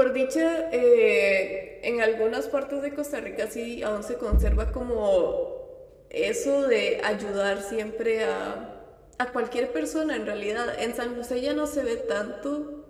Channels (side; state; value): both; identical; correlation 1.00